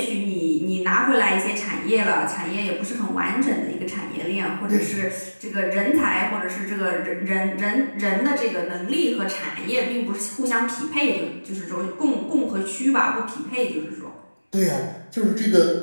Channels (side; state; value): both; inverted; correlation -1.00